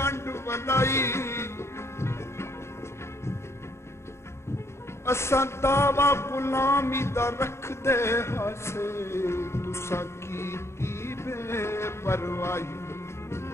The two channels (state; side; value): late; right; 0.13 ms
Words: वलाई। असां दावा गुलामी दा रख दे हासे, तुसा कीती बेपरवाही।